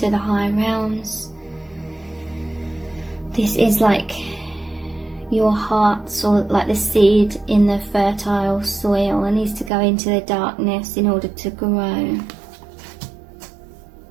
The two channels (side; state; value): left; drops out; at 9.7 s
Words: the high realms. This is like your heart, so like the seed in the fertile soil, and needs to go into the darkness in order to grow.